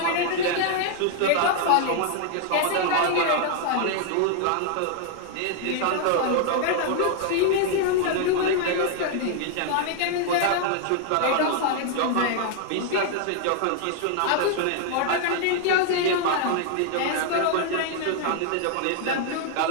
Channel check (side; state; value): both; different; correlation 0.00